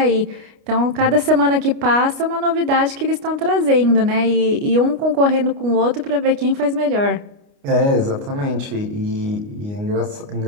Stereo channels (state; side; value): late; left; 29 ms